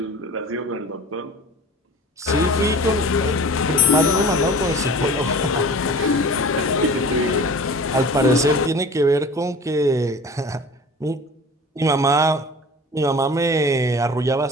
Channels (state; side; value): normal; both; correlation 0.41